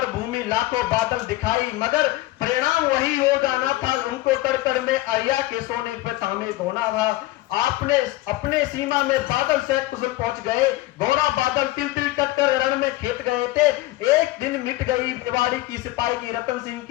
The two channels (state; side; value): quieter; right; 18.0 dB